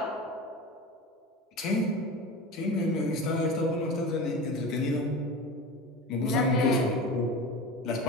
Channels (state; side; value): normal; both; correlation 0.30